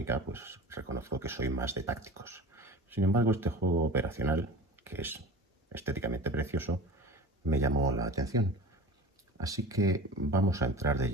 pues reconozco que soy más de tácticos. Sin embargo, este juego operacional, que es estéticamente precioso, me llamó la atención. Así que vamos a entrar de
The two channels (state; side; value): normal; both; correlation 0.35